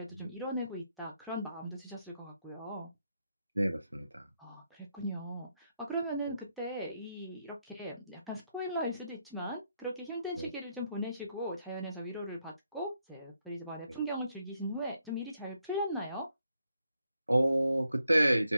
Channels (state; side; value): inverted; both; correlation -0.79